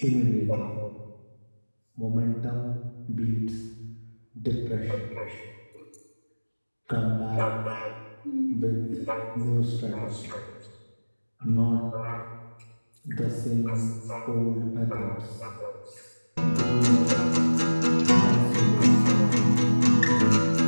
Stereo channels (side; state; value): both; inverted; correlation -1.00